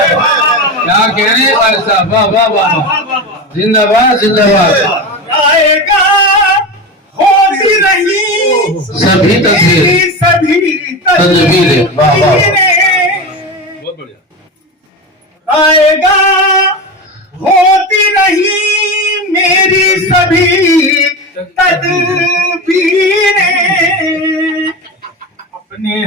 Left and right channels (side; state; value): both; normal; correlation 0.23